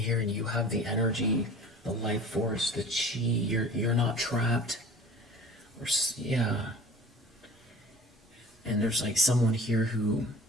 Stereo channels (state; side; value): normal; both; correlation 0.42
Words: and you have the energy, the life force, the chi, you're not trapped. Or, yeah. And there's like someone here who